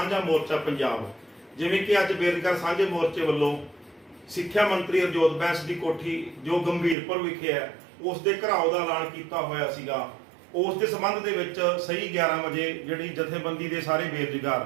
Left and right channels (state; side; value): drops out; left; at 7.0 s